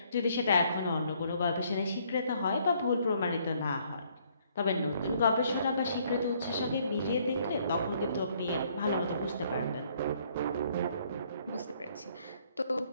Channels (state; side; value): inverted; both; correlation -0.66